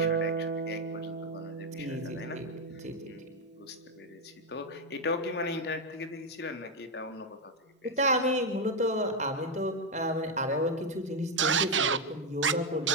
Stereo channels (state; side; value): normal; both; correlation 0.04